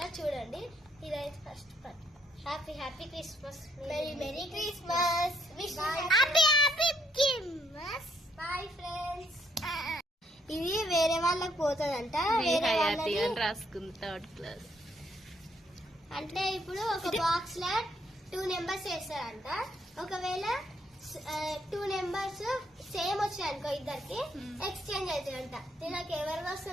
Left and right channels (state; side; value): normal; both; correlation 0.71